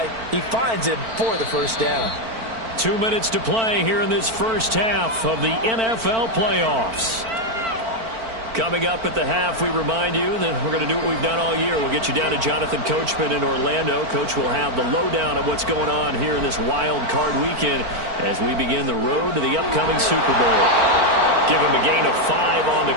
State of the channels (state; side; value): late; left; 4.4 ms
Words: he finds him for the 1st down. 2 minutes to play here in this first half of the NFL playoffs. Coming up at the half, we remind you that we're going to do what we've done all year. We'll get you down to Jonathan Coachman in Orlando. Coach will have the lowdown of what's going on here in this wild card weekend as we begin the road to the upcoming Super Bowl. Give him a gain of 5 on the